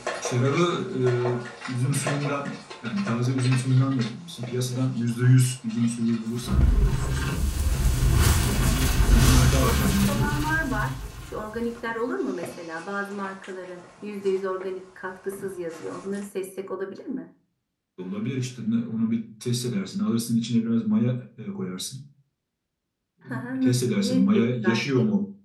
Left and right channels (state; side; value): identical; both; correlation 1.00